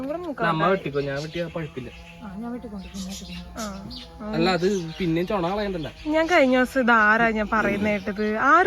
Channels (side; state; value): both; identical; correlation 1.00